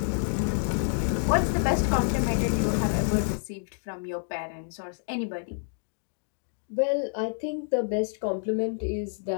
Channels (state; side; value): silent; right; digital silence